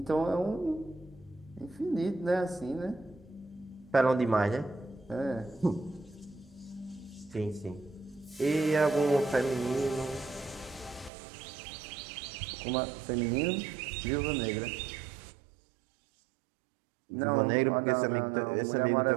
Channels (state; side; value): drops out; left; at 11.1 s